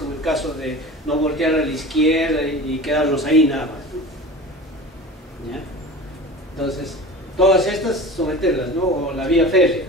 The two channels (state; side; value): normal; both; correlation 0.35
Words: el caso de no voltear a la izquierda y quedarnos ahí nada más, ¿no? ¿Ya? Entonces, todas estas someterlas, ¿no? O la vía férrea,